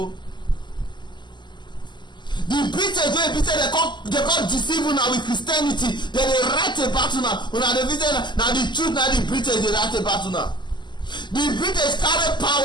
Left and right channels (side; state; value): right; late; 0.21 ms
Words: The British wey be say dem come deceive una with Christianity, dem dey write about una dey visit na the truth na the British dey write about una. The British carry